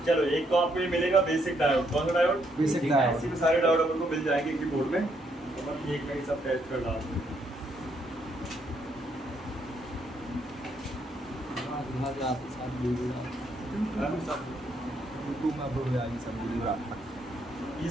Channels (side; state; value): both; normal; correlation 0.73